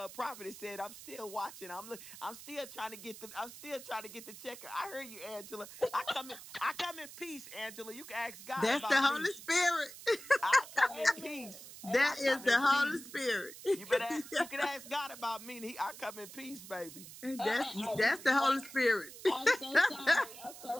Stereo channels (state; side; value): noise; right; hiss, 15 dB below the sound